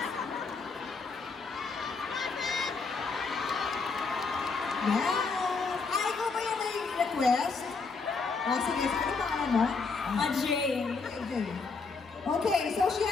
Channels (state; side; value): quieter; right; 4.5 dB